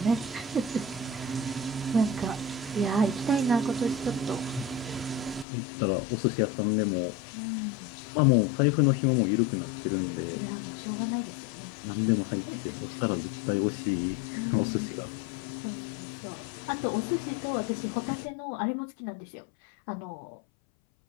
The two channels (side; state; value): right; drops out; at 5.5 s